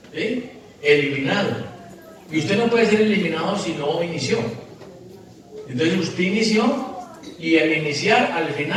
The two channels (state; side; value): identical; both; correlation 1.00